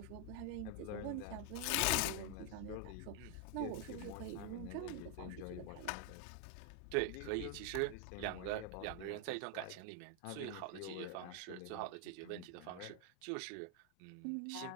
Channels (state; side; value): different; both; correlation 0.01